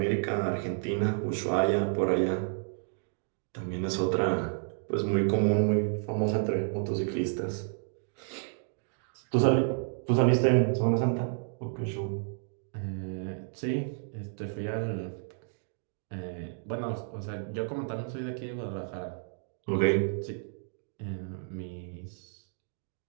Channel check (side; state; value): left; silent; 57 dB below the other